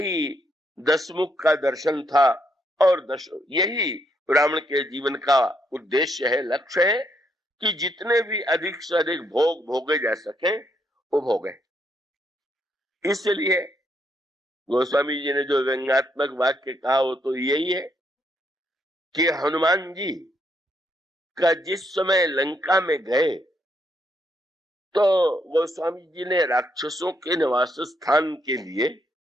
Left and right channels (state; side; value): normal; both; correlation 0.75